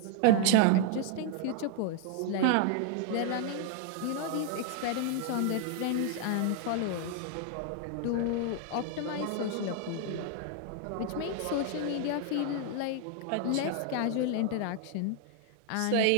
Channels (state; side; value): different; both; correlation 0.00